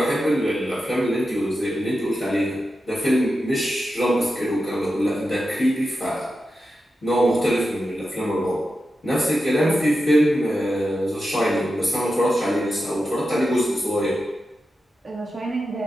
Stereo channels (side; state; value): both; normal; correlation 0.90